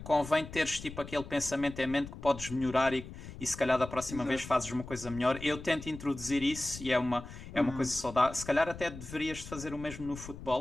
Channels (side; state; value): left; noise; rumble, 13 dB below the sound